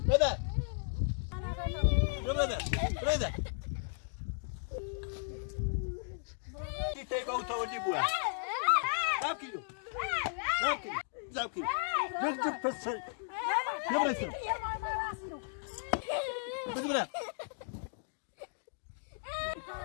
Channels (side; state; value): right; silent; digital silence